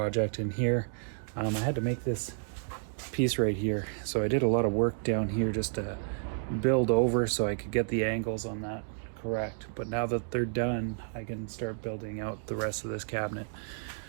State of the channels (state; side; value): silent; left; digital silence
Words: in here. I had to make this piece right here. So I did a lot of work down here just to build over so I could get the angles on that correct. But now that they're done, I can start building out the rest of this cabinet.